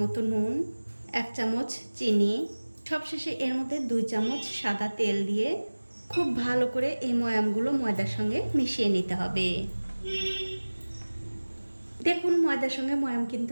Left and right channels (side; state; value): both; inverted; correlation -1.00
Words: মতো নুন, 1 চামচ চিনি, সবশেষে এর মধ্যে 2 চামচ সাদা তেল দিয়ে খুব ভালো করে এই ময়ামগুলো ময়দার সঙ্গে মিশিয়ে নিতে হবে। দেখুন, ময়দার সঙ্গে ময়াম কিন্তু